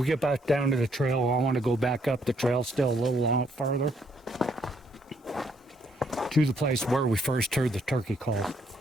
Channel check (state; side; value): normal; both; correlation 0.70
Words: get back down to the trail. I want to go back up the trail still a little farther to the place where we first heard the turkey call.